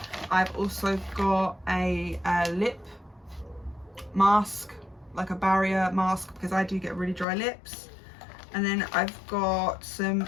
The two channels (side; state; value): right; drops out; at 7.2 s